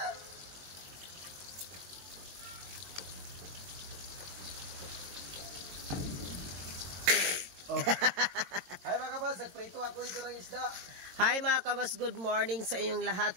Oh. Hi mga kabas, nagprito ako dito ng isda. Hi mga kabas, good morning sa inyong lahat.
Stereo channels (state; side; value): late; left; 22 ms